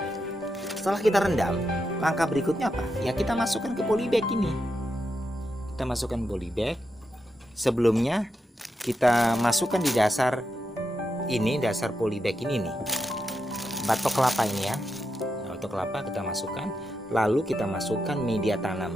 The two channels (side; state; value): both; normal; correlation 0.85